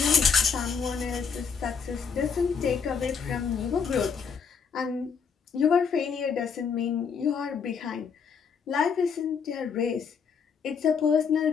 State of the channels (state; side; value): quieter; right; 6.1 dB